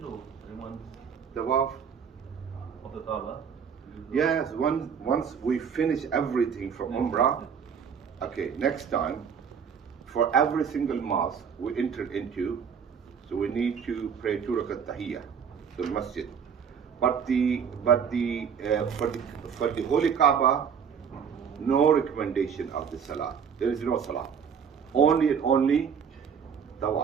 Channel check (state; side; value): quieter; left; 7.1 dB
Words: or anyone Tawaf. of the Kaaba? Yes, once we finish everything from Umrah, okay, next time, for every single mosque we enter into, so we need to pray 2 rakat tahiyyah to the masjid. But for the Holy Kaaba, no recommendation of the salah. There is no salah. Only and only